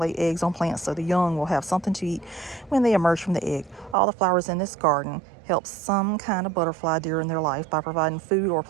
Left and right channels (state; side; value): drops out; left; at 4.0 s